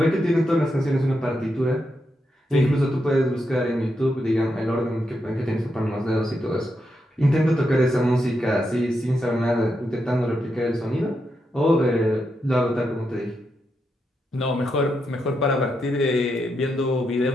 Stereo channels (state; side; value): normal; both; correlation 0.83